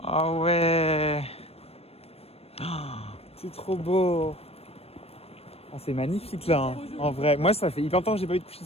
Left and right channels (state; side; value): late; right; 0.29 ms